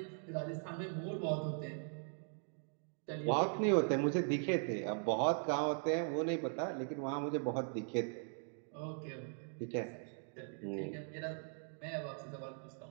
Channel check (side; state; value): left; silent; 51 dB below the other